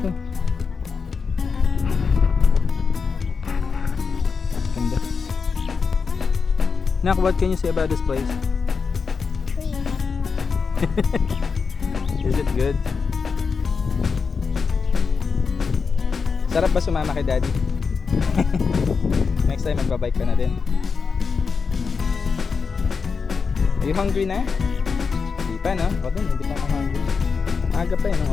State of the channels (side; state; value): right; quieter; 5.3 dB